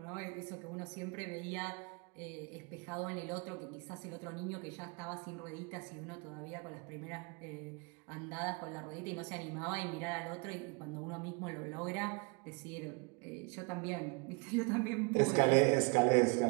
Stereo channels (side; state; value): left; quieter; 31.9 dB